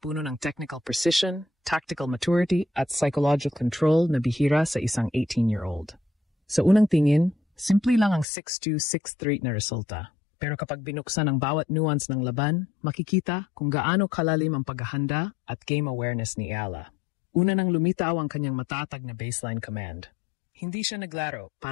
ng technical precision, tactical maturity, at psychological control na bihira sa isang 18-year-old. Sa unang tingin, simple lang ang 6-2, 6-3 na resulta. Pero kapag binuksan ang bawat nuance ng laban, makikita kung gaano kalalim ang paghahanda at game awareness ni Ella. Una nang lumitaw ang kanyang matatag na baseline command. Hindi siya naglaro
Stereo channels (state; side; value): drops out; right; at 8.2 s